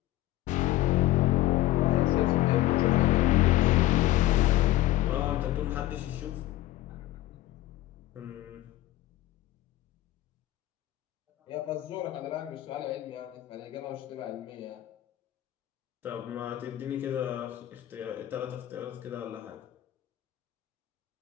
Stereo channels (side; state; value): right; quieter; 15.5 dB